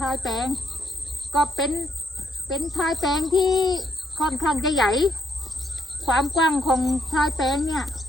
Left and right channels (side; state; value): both; normal; correlation 0.74